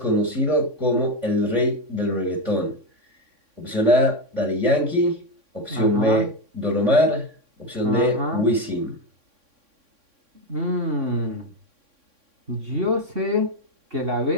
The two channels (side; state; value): left; late; 3.6 ms